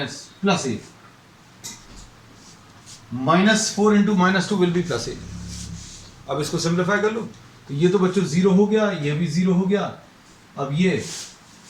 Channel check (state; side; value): identical; both; correlation 1.00